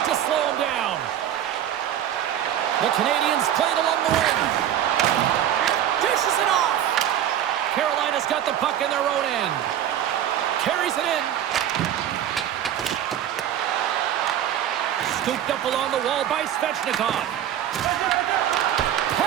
to slow him down. The Canadiens played along the wing. Dishes it off. Carolina's got the puck in their own end. Carries it in. Scooped up along the wall by Svechnikov.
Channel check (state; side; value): quieter; left; 10.8 dB